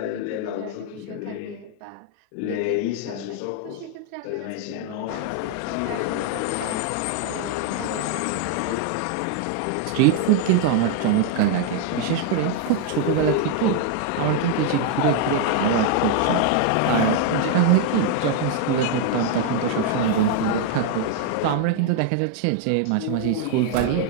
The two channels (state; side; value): different; both; correlation 0.00